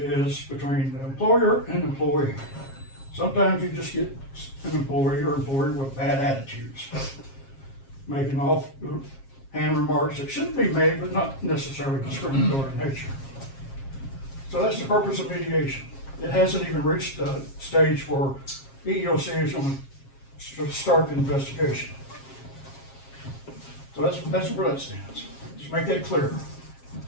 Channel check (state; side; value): late; right; 7.4 ms